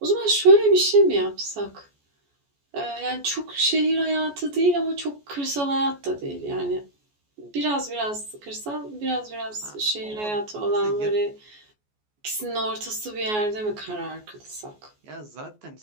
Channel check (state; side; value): late; left; 14 ms